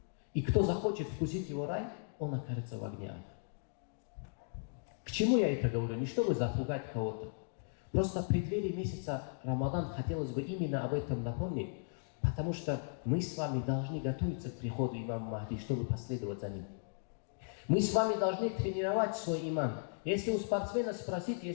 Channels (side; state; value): right; silent; digital silence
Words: И кто захочет вкусить его рай, он окажется в огне ада. К чему я это говорю? Не чтобы запугать кого-то. Просто в преддверии месяца Рамадан хотелось бы именно об этом напомнить, потому что мы с вами должны готовиться к приходу имама Махди, чтобы последовать за ним. Мы с вами должны тренировать свой иман. Если у спортсмена спросить,